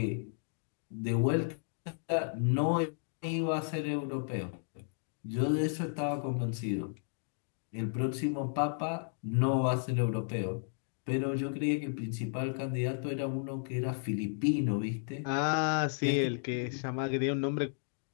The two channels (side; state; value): right; silent; digital silence